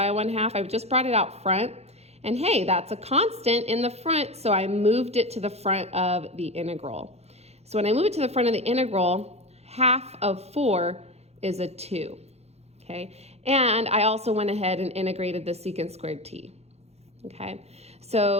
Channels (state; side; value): late; left; 0.31 ms